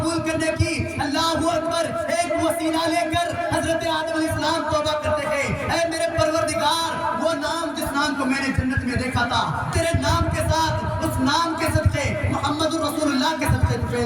کرنے کی، اللہ اکبر، ایک وسیلہ لے کر حضرت آدم علیہ السلام توبہ کرتے ہیں، اے میرے پروردگار، وہ نام جس نام کو میں نے جنت میں دیکھا تھا، تیرے نام کے ساتھ اس نام کے صدقے محمد رسول اللہ کے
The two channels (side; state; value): both; identical; correlation 1.00